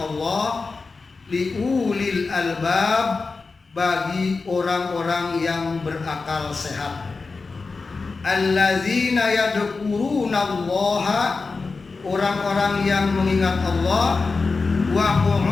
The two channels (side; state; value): right; quieter; 4.2 dB